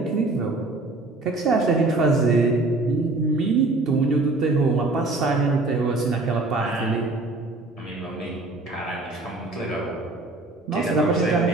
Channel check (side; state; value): left; quieter; 3.1 dB